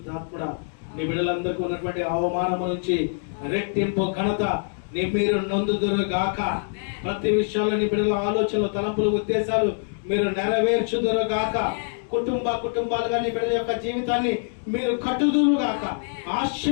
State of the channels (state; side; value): silent; right; digital silence